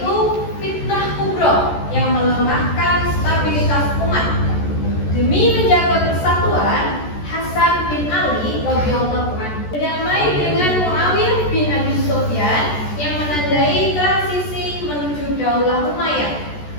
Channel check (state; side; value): late; right; 14 ms